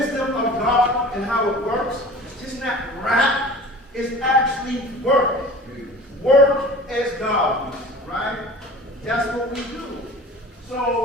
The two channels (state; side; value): normal; both; correlation 0.41